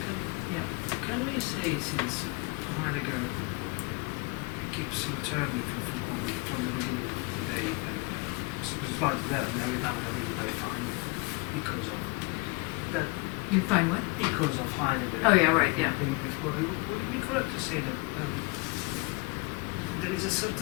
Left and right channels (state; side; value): quieter; right; 25.6 dB